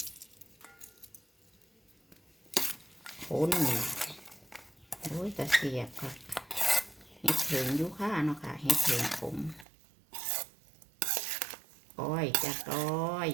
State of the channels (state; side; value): drops out; left; at 9.7 s